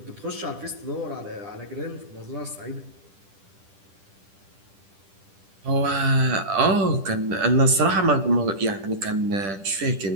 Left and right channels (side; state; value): left; late; 10 ms